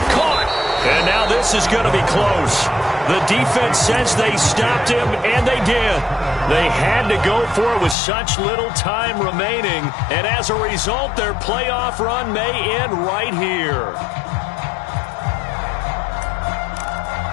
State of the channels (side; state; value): right; drops out; at 8.0 s